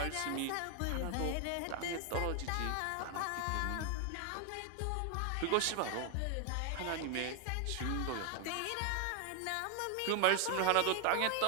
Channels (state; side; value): different; both; correlation 0.00